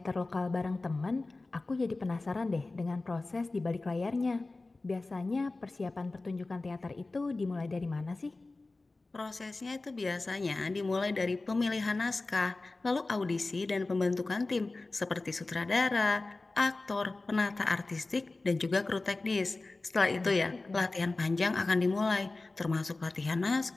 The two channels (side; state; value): right; quieter; 3.3 dB